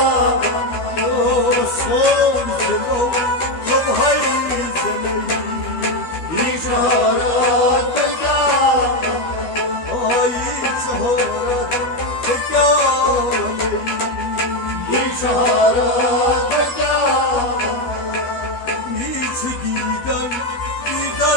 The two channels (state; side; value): late; right; 12 ms